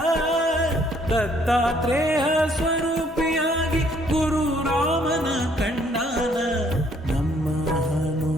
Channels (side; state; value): both; normal; correlation 0.64